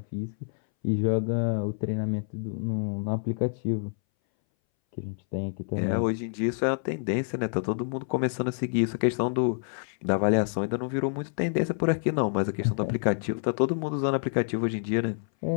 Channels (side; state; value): right; silent; 60 dB below the other